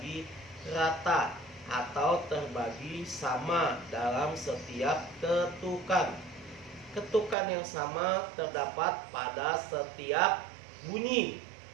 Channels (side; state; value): left; drops out; at 7.4 s